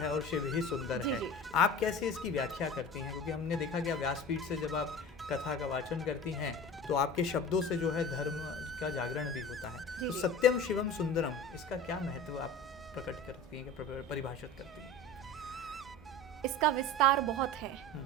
और शिव ही सुंदर है। आप कैसे इसकी व्याख्या करती हैं? क्योंकि हमने देखा कि व्यासपीठ से जब आप कथा का वाचन करती हैं तो आपके शब्दों से जो है धर्म का जागरण भी होता है। तो सत्यम शिवम सुंदरम, इसका क्या महत्व आप प्रकट करती हैं, परिभाषित करती हैं? इसका विस्तार बहुत है।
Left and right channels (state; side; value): normal; both; correlation 0.36